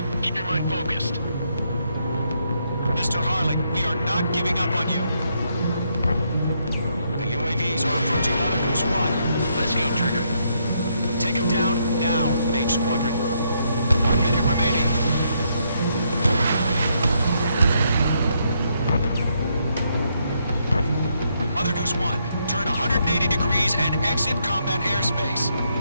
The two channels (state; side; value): inverted; both; correlation -0.76